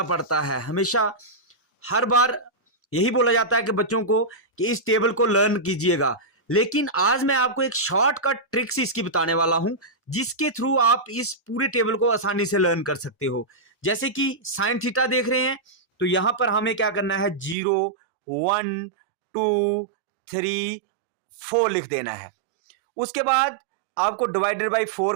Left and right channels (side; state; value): left; drops out; at 17.6 s